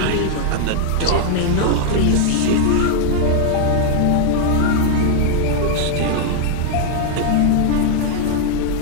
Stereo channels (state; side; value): different; both; correlation 0.00